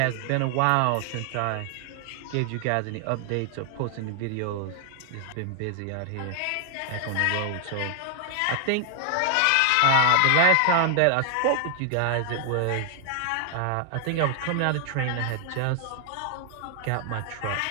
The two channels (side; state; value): both; different; correlation 0.00